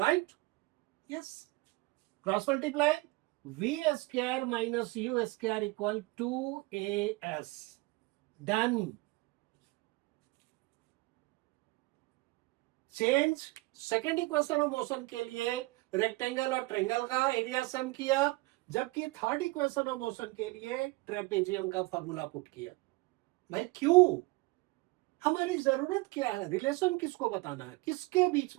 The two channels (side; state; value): left; quieter; 22.9 dB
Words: yes, cross multiply, v square minus u square equal 2as, done. Change, second equation of motion के लिए rectangle और triangle का area some किया, जबकि third equation of motion के लिए trapezium का formula put किया। भाई क्यों, हमारी जरूरत क्या है, रिलेशन किसको बताना है, किसके बीच